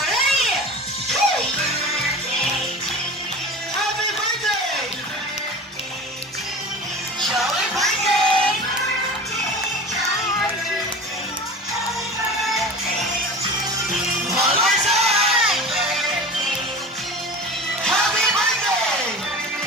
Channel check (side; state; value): both; normal; correlation 0.35